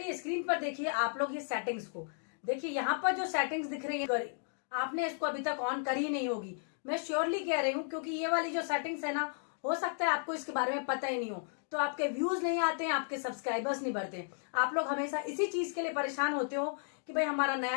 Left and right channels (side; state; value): right; silent; digital silence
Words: स्क्रीन पर देखिए आप लोग ये सेटिंग्स को देखिए। यहाँ पर जो सेटिंग्स दिख रही है आपने इसको अभी तक ऑन करी नहीं होगी। मैं श्योरली कह रही हूँ क्योंकि ये वाली जो सेटिंग्स है ना, हो सकता है आपको इसके बारे में पता ही नहीं हो, तो आपके व्यूज नहीं आते हैं, आपके सब्सक्राइबर्स नहीं बढ़ते। आप लोग हमेशा इसी चीज के लिए परेशान होते हो कि भाई हमारा